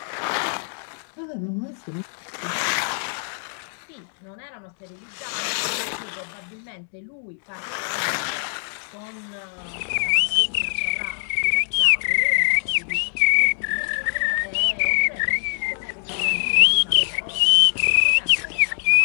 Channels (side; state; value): right; silent; digital silence